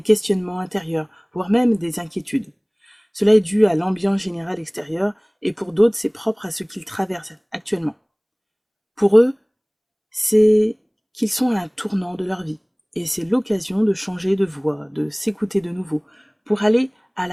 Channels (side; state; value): both; identical; correlation 1.00